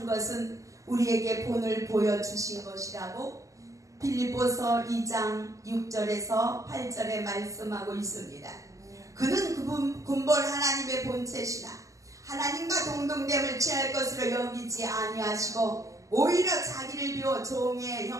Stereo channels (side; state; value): left; late; 0.16 ms